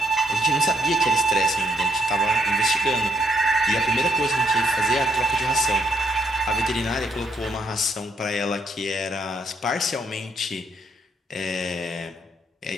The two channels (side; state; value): both; normal; correlation 0.72